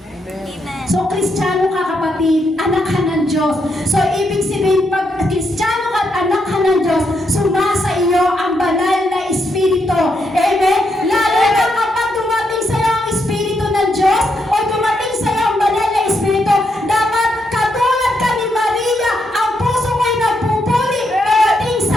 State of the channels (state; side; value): normal; both; correlation 0.80